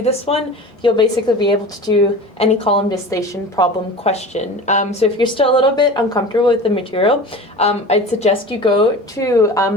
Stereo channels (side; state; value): both; normal; correlation 0.35